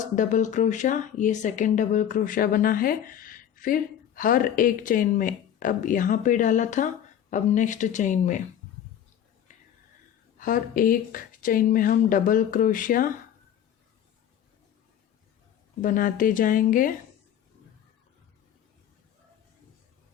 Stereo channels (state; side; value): quieter; right; 9.8 dB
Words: डबल क्रोशा, ये सेकंड डबल क्रोशा बना है। फिर हर एक चेन में, अब यहाँ पे डाला था, अब नेक्स्ट चेन में हर एक चेन में हम डबल क्रोशिया बनाते जाएंगे।